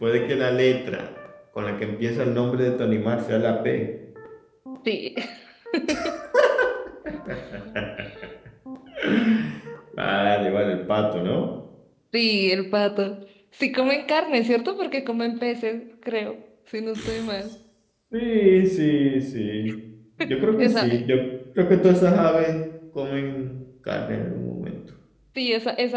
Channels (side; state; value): both; identical; correlation 1.00